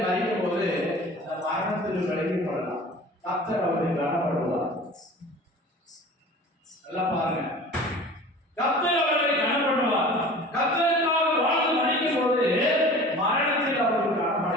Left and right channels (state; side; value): normal; both; correlation 0.41